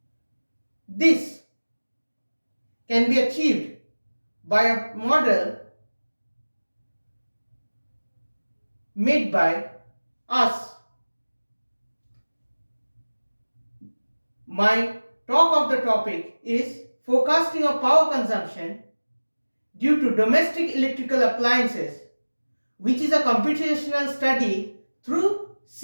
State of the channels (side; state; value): both; inverted; correlation -1.00